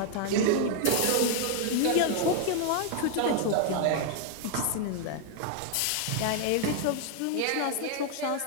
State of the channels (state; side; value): different; both; correlation 0.00